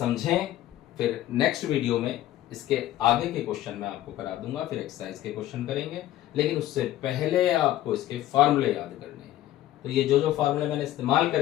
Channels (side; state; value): right; quieter; 13.9 dB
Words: फिर नेक्स्ट वीडियो में इसके आगे के क्वेश्चन मैं आपको करा दूंगा, फिर एक्सरसाइज के क्वेश्चन करेंगे। लेकिन उससे पहले आपको इसके फार्मूले याद करने हैं। तो ये जो फार्मूले मैंने इस्तेमाल